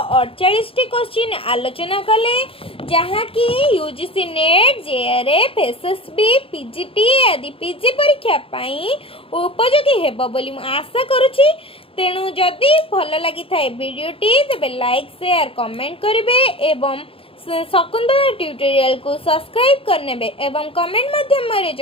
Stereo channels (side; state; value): right; late; 0.27 ms